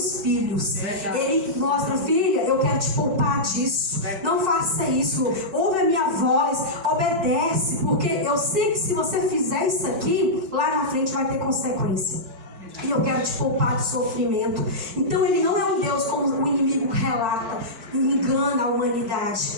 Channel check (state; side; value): late; left; 4.5 ms